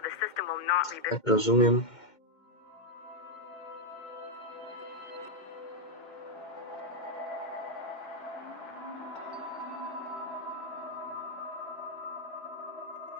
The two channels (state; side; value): late; right; 2.1 ms